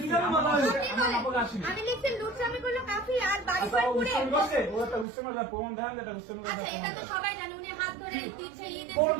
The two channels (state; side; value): drops out; left; at 5.1 s